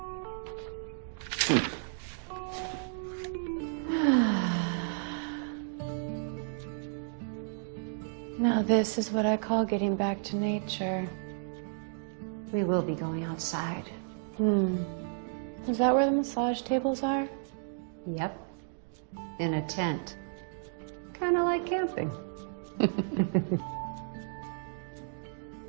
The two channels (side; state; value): left; silent; digital silence